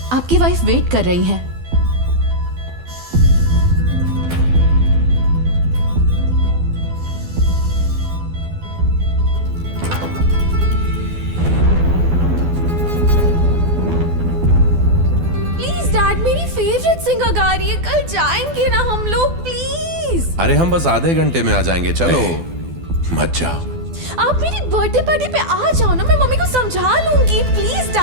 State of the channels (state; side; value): late; left; 12 ms